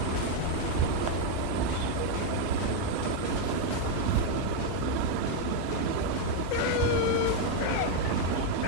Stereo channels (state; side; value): different; both; correlation 0.01